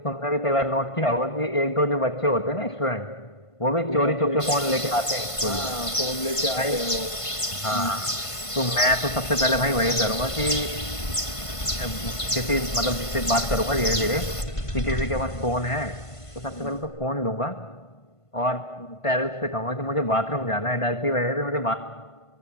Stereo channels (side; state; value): right; late; 1.5 ms